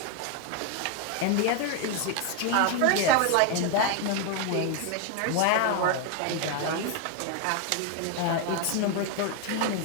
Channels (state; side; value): different; both; correlation 0.01